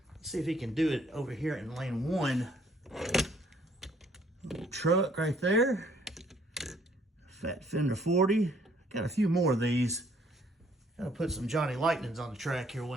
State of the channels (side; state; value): both; normal; correlation 0.63